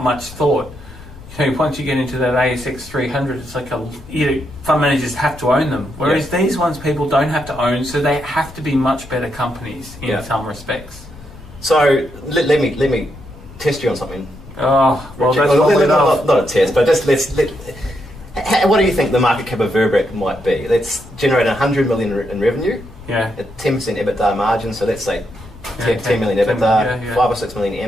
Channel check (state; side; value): noise; left; rumble, 18 dB below the sound